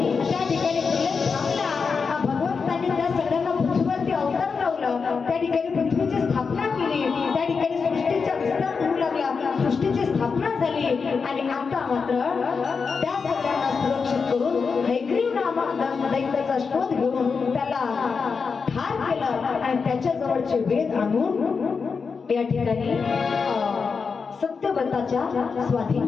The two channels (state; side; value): quieter; right; 5.3 dB